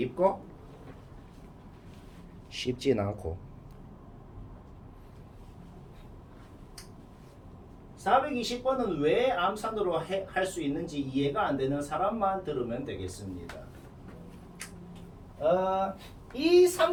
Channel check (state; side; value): identical; both; correlation 1.00